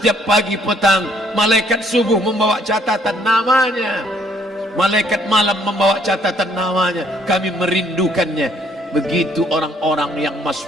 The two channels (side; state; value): both; normal; correlation 0.65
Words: pagi petang, malaikat subuh membawa catatan namanya, malaikat malam membawa catatan namanya. Kami merindukannya. Begitu orang-orang yang